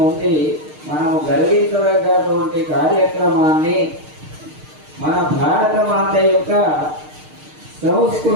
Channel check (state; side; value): late; left; 6.6 ms